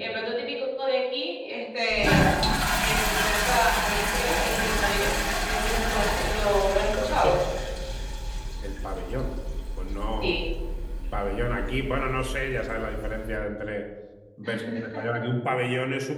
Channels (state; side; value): identical; both; correlation 1.00